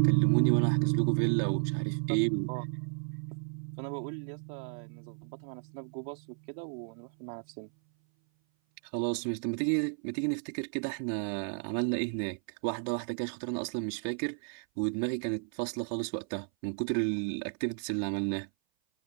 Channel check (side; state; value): left; silent; 56 dB below the other